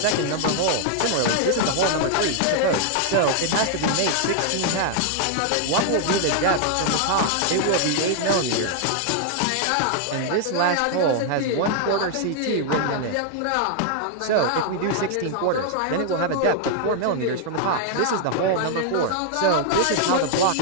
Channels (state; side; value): different; both; correlation 0.00